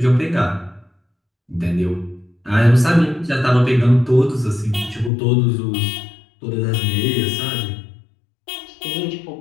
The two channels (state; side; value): drops out; right; at 5.1 s